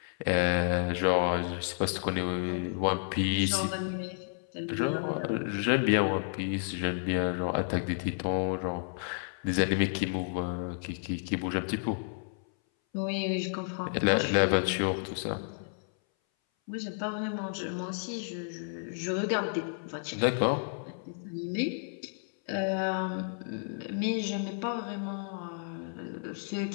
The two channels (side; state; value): right; silent; 57 dB below the other